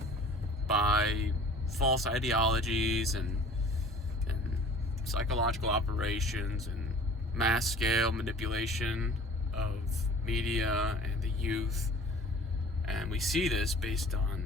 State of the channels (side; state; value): both; normal; correlation 0.47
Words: by false ideologies and psychological operations and mass scale manipulation of media and the youth. And we see this based